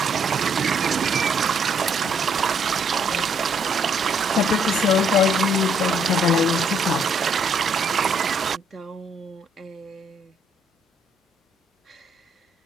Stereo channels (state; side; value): normal; both; correlation 0.68